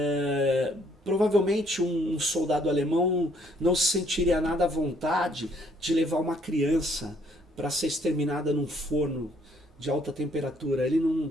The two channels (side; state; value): both; normal; correlation 0.65